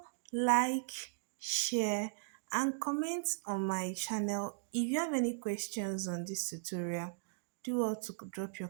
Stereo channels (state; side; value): silent; left; digital silence